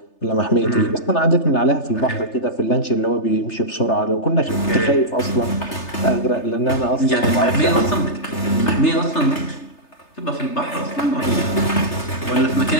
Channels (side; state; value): right; late; 3.3 ms